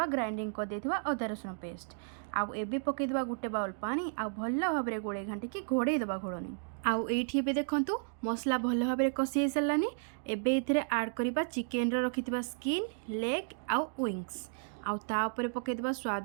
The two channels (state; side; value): silent; left; digital silence